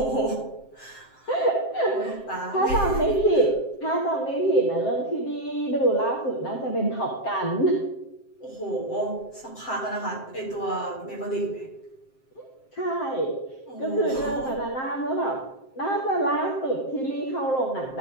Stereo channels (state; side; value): late; right; 7.6 ms